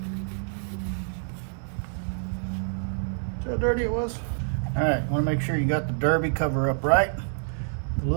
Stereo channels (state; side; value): silent; left; digital silence